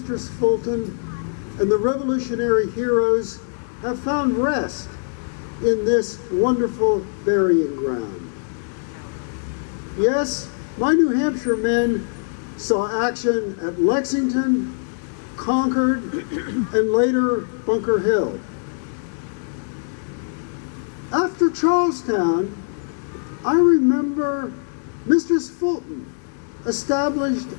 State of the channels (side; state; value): right; silent; digital silence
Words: Fulton and the revolutionary heroes have found rest in this wonderful burying ground. Yes, my New Hampshire men saw action at Lexington, Concord, and later Bunker Hill. After Charlestown, I remember Mistress Fulton established